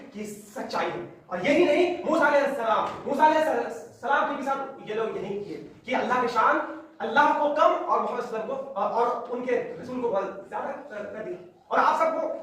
کی سچائی ہے. اور یہی نہیں موسیٰ علیہ السلام کے بھی ساتھ یہ لوگ یہی کیے کہ اللہ کی شان اللہ کو کم اور محمد صلی اللہ علیہ وسلم کو اور ان کے رسول کو بہت زیادہ کر دیا. اور آپ سب کو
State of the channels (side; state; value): both; identical; correlation 1.00